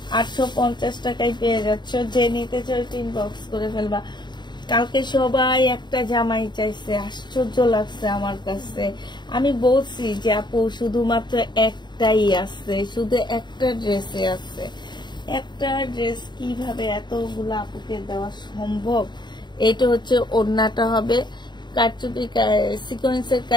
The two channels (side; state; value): right; late; 0.21 ms